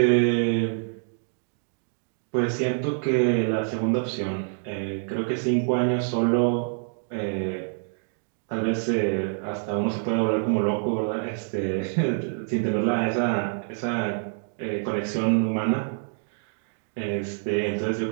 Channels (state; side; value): silent; left; digital silence